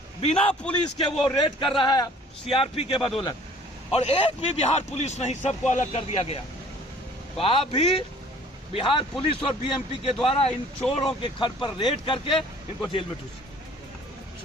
बिना पुलिस के वो रेड कर रहा है सीआरपी के बदौलत, और एक भी बिहार पुलिस नहीं, सबको अलग कर दिया गया, तो आप भी बिहार पुलिस और बीएमपी के द्वारा इन चोरों के घर पर रेड करके इनको जेल में ठूसिए।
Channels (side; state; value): both; normal; correlation 0.53